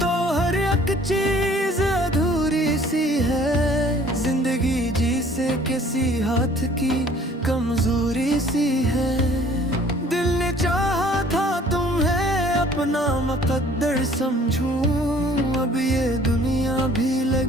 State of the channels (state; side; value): normal; both; correlation 0.54